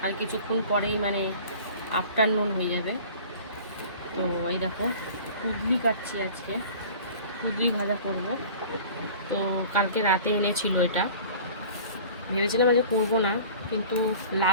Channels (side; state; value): both; inverted; correlation -0.43